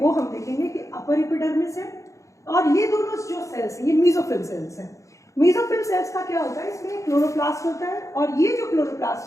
हम देखेंगे कि अपर एपिडर्मिस है, और ये दोनों जो सेल्स हैं ये मेसोफिल सेल्स हैं। मेसोफिल सेल्स का क्या होता है, इसमें क्लोरोप्लास्ट होता है, और ये जो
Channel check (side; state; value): right; late; 0.15 ms